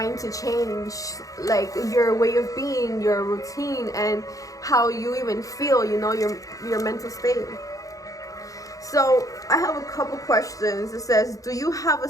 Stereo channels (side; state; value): right; late; 0.17 ms